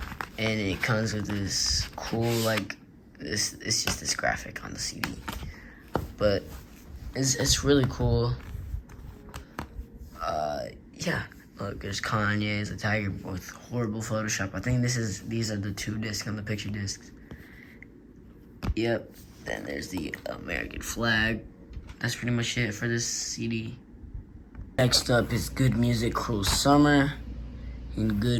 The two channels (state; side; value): identical; both; correlation 1.00